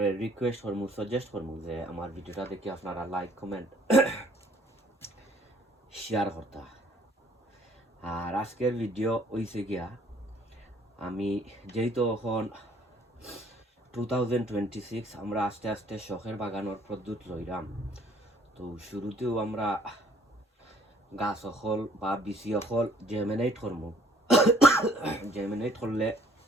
রিকোয়েস্ট করবো, সাজেস্ট করবো যে আমার ভিডিওটা দেখে আপনারা লাইক কমেন্ট শেয়ার করতা। আর আজকের ভিডিও হইছে গিয়া আমি যেহেতু এখন 2026 আমরা আস্তে আস্তে শখের বাগানোর পদ্ধত লইলাম। তো শুরুতেও আমরা গাছ অকল বা বিচি অকল জেমিনেট করবো। জেমিনেট করলে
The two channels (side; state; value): both; normal; correlation 0.59